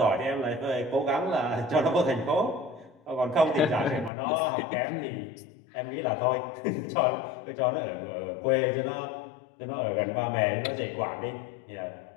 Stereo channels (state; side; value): drops out; right; at 4.1 s